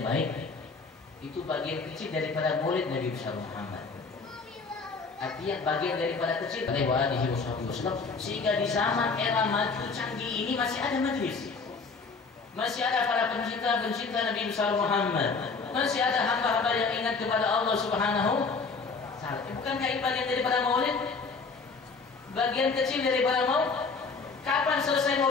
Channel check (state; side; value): quieter; right; 4.5 dB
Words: baik, itu bagian kecil daripada maulid Nabi besar Muhammad. Artinya bagian daripada kecil sehingga di zaman era maju canggih ini masih ada majelis, masih ada para pencinta Nabi besar Muhammad, masih ada hamba-hamba yang ingat kepada Allah Subhanahu wa Ta'ala. Bukankah ini bagian daripada maulid? Bagian kecil daripada maulid. Kapan selesai